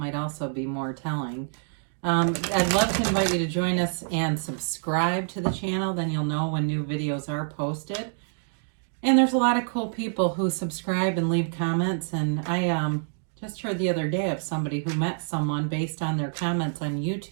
also be more telling. I'd love to invite you to join us and subscribe to the channel. Then you'll know when new videos are posted. And there's a lot of cool people who subscribe and leave comments. And I just heard the other day of somebody who met someone based on their comments on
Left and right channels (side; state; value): left; silent; digital silence